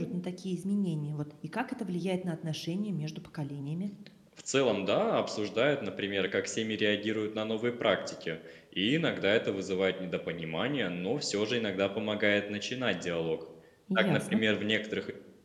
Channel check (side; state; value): both; identical; correlation 1.00